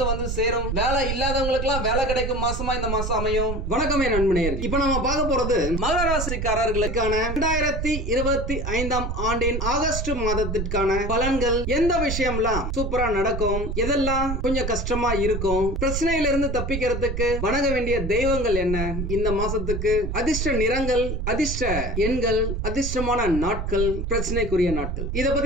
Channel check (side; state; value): right; noise; rumble, 3 dB below the sound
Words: வந்து சேரும். வேலை இல்லாதவங்களுக்கு எல்லாம் வேலை கிடைக்கும் மாசமா இந்த மாசம் அமையும். வணக்கம் நண்பனேர். இப்ப நம்ம பார்க்க போறது மகர ராசிக்காரர்களுக்கான 2025 ஆண்டின் ஆகஸ்ட் மாதத்திற்கான பலன்கள். எந்த விஷயம்லாம் சூப்பரா நடக்கும், எதெல்லாம் கொஞ்சம் கஷ்டமா இருக்கும், பிரச்சனையில இருந்து தப்பிக்கிறதுக்கு வணங்க வேண்டிய தெய்வங்கள் என்ன, இந்த மாசத்துக்கு அதிர்ஷ்ட நிறங்கள், அதிர்ஷ்ட எண்கள், அதிர்ஷ்டமான நாட்கள், பிரச்சனைக்குரிய நாட்கள், இத